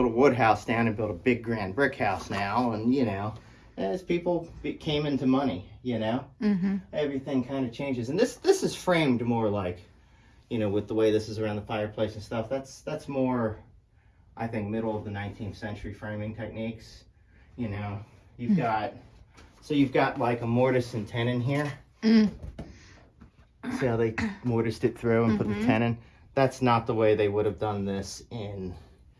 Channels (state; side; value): identical; both; correlation 1.00